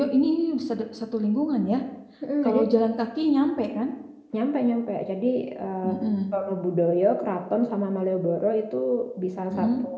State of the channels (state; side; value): identical; both; correlation 1.00